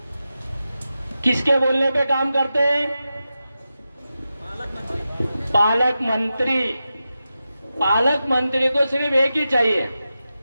किसके बोलने पे काम करते हैं? पालक मंत्री। पालक मंत्री को सिर्फ एक ही चाहिए,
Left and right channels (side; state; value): both; inverted; correlation -0.91